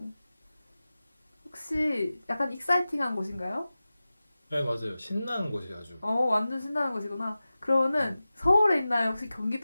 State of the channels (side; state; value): both; inverted; correlation -0.96